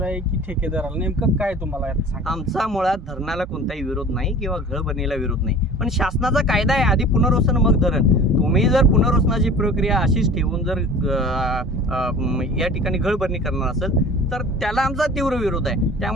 आहे की ठेकेदाराला, नेमकं काय तुम्हाला यात सांगा? आमचा मुळात धरणाला कोणताही विरोध नाही किंवा गळभरणीला विरोध नाही, पण शासनाचा कायदा आहे आधी पुनर्वसन मग धरण. तुम्ही जर पुनर्वसनाची प्रक्रिया अशीच ठेवून जर या ठिकाणी गळभरणी करणार असेल तर त्याला आमचा तीव्र विरोध आहे.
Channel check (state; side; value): normal; both; correlation 0.42